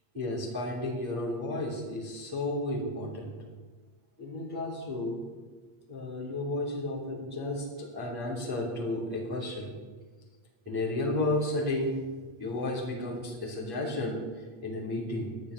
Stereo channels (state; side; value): late; left; 8.5 ms